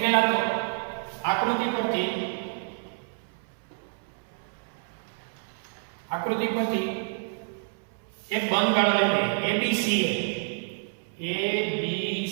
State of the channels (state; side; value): silent; left; 59 dB below the other